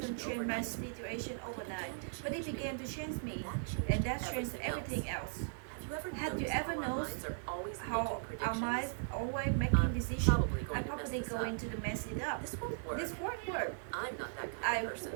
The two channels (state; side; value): silent; left; digital silence